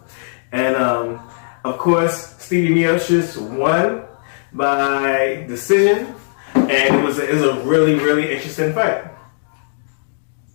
And of course, Stipe Miocic won by decision, and it was a really, really interesting fight.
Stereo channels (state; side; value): silent; right; 67 dB below the other